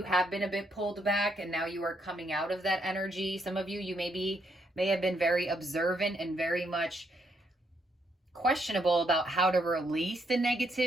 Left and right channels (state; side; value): normal; both; correlation 0.75